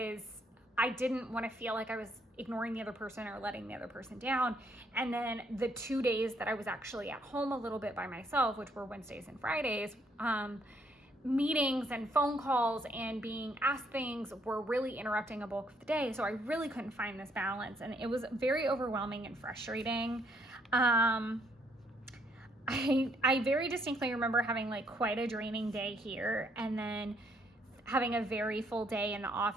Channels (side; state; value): both; normal; correlation 0.70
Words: I didn't want to feel like I was ignoring the other person or letting the other person down. And then the 2 days that I was actually at home a little bit by myself, which were Wednesdays and Fridays, meetings and phone calls and being asked things were really interrupting a bulk of the day. So I really couldn't find this balance, and it was very overwhelming and frustrating. I very distinctly remember having like quite a draining day here, and then having a very full day in the